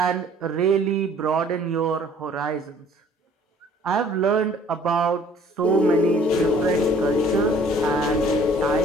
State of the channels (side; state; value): both; normal; correlation 0.55